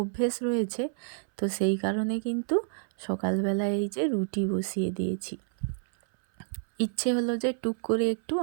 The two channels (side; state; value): left; silent; 59 dB below the other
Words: রয়েছে, তো সেই কারণে কিন্তু সকালবেলায় এই যে রুটি বসিয়ে দিয়েছি। ইচ্ছে হলো যে টুক করে একটু